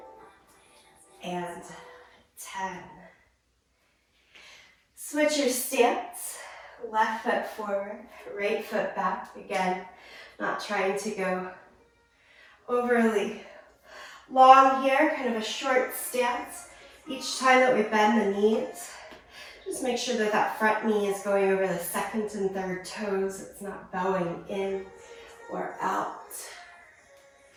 and 10. Switch your stance, left foot forward, right foot back. Again, not trying to go overly long here, kind of a short stance. Each time that we bend the knees, just make sure that that front knee is going over the second and third toes. It's not bowing in or out.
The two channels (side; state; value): both; identical; correlation 1.00